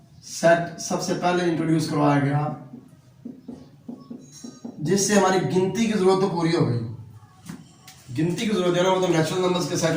सेट सबसे पहले इंट्रोड्यूस करवाया गया, जिससे हमारी गिनती की जरूरत तो पूरी हो गई। गिनती की जरूरत है ना वो तो नेचुरल नंबर्स के सेट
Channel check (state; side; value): identical; both; correlation 1.00